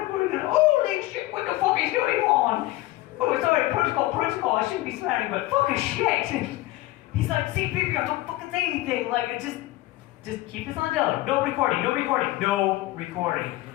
are we gonna, holy shit, what the fuck is going on? Oh, sorry, protocol, I shouldn't be swearing, but fucking shit. And he's like, C-3PO, don't fucking say anything. Like, just keep this on Dylan. No recording.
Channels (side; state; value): right; quieter; 17.8 dB